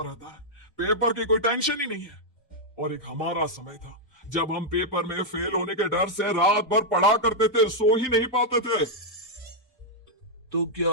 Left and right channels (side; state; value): both; normal; correlation -0.03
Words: रहता है, पेपर की कोई टेंशन ही नहीं है। और एक हमारा समय था जब हम पेपर में फेल होने के डर से रात भर पढ़ा करते थे, सो ही नहीं पाते थे। तो क्या